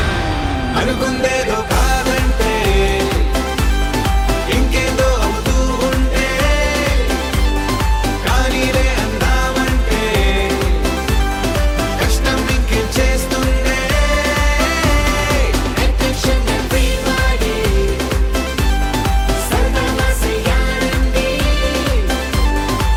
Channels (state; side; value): identical; both; correlation 1.00